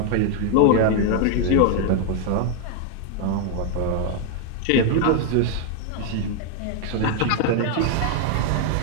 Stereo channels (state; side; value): different; both; correlation 0.00